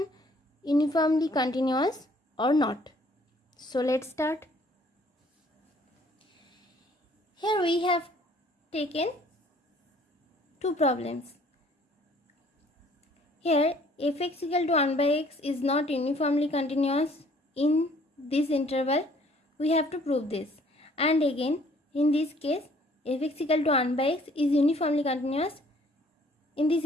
uniformly continuous or not? So let's start. Here we have taken two problems. Here f(x) equal to 1 by x is not uniformly continuous in this interval. We have to prove this. And again, in this case, f(x) equal to 1 by x is uniformly continuous in this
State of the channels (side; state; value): both; normal; correlation 0.59